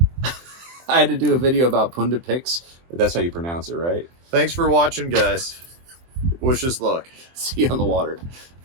I had to do a video about pundit picks. But that's how you pronounce it, right? Thanks for watching, guys. Wish us luck. See you on the water.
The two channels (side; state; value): left; late; 23 ms